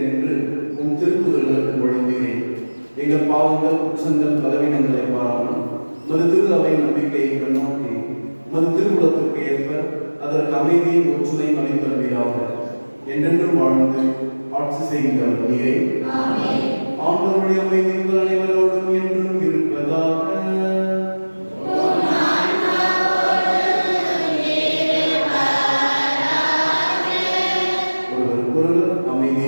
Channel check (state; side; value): inverted; both; correlation -1.00